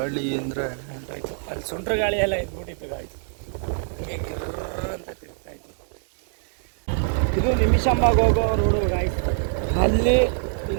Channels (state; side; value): silent; left; digital silence